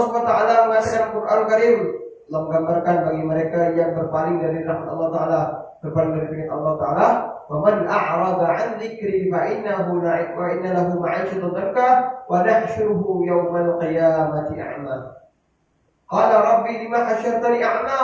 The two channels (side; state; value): both; identical; correlation 1.00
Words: SWT mengatakan Quran Karim menggambarkan bagi mereka yang berpaling dari rahmat Allah Taala, berpaling dari firman Allah Taala, "Wa man a'rada 'an dzikri fa innahu wa inna lahu ma'isyatan dhanka wa nahsyuruhu yawmal qiyamati a'ma." Qala rabbi lima hasyartani